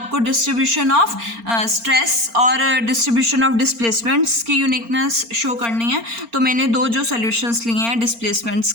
डिस्ट्रीब्यूशन ऑफ स्ट्रेस और डिस्ट्रीब्यूशन ऑफ डिस्प्लेसमेंट्स की यूनिकनेस शो करनी है। तो मैंने दो जो सॉल्यूशंस लिए हैं डिस्प्लेसमेंट्स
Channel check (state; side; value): late; left; 4.3 ms